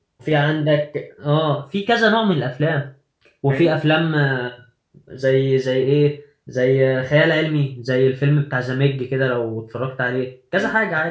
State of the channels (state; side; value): identical; both; correlation 1.00